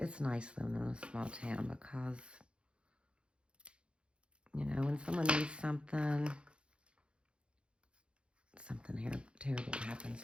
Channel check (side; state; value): left; late; 0.057 ms